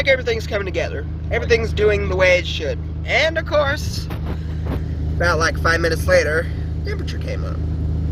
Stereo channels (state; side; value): identical; both; correlation 1.00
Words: everything's coming together. Everything's doing the way it should. And of course, about like 5 minutes later, temperature came up.